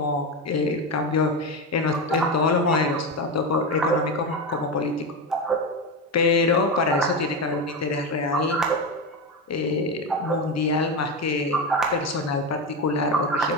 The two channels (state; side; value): normal; both; correlation 0.16